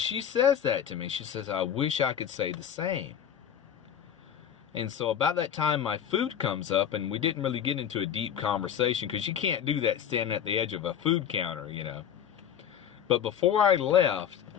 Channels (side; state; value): right; quieter; 9.0 dB